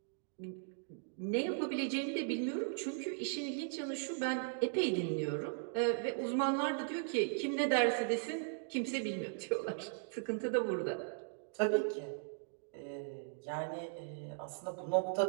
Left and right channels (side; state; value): left; silent; digital silence